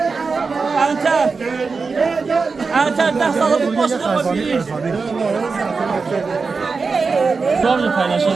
Enter ders alıp başına bakıyor. Doğru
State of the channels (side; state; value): left; quieter; 4.6 dB